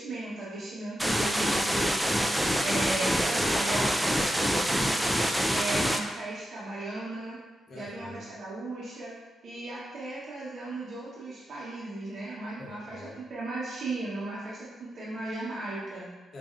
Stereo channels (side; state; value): both; normal; correlation 0.89